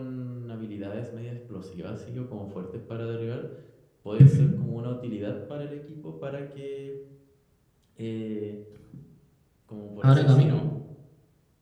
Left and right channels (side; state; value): both; identical; correlation 1.00